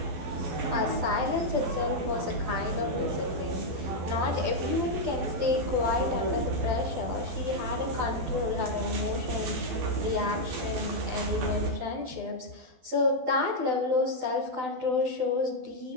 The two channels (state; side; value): late; left; 12 ms